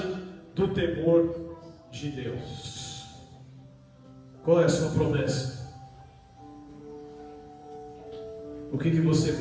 do temor de Deus. Qual é a sua promessa? O que você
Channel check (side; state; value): both; identical; correlation 1.00